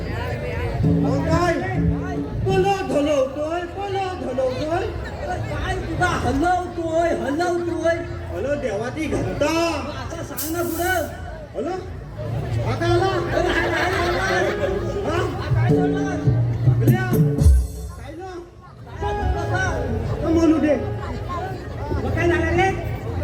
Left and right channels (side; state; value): both; identical; correlation 1.00